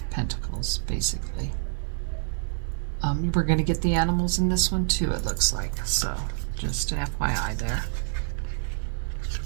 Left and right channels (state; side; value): silent; left; digital silence